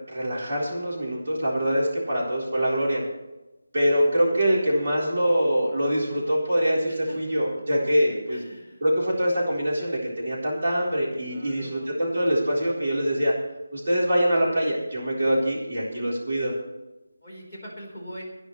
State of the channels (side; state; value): both; inverted; correlation -0.93